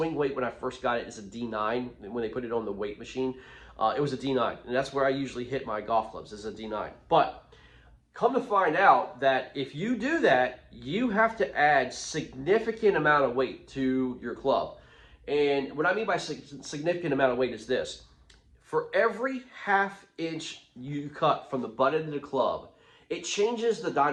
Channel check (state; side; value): identical; both; correlation 1.00